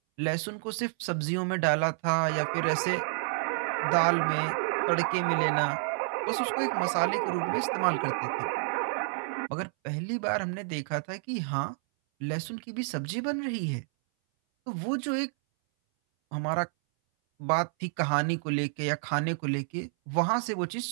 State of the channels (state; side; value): silent; left; 58 dB below the other